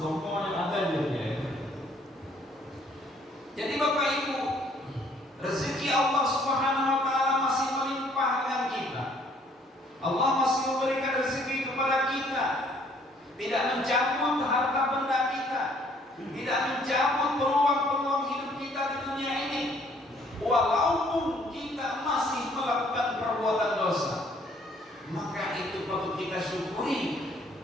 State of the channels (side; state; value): both; normal; correlation 0.62